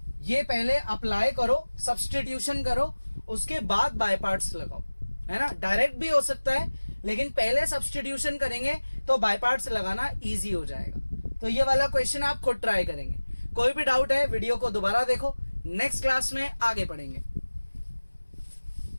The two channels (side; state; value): both; inverted; correlation -1.00